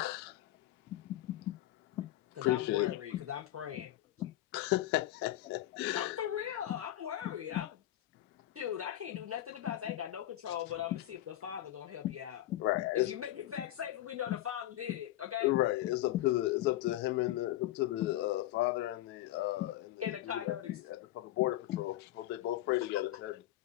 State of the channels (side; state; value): right; quieter; 14.4 dB